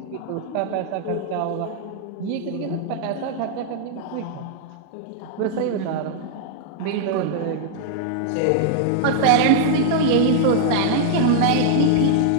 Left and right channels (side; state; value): both; different; correlation -0.01